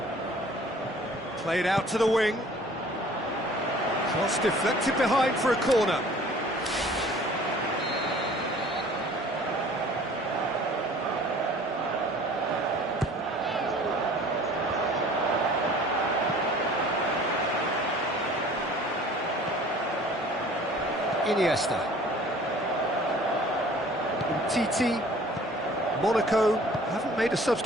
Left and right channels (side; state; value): both; normal; correlation 0.50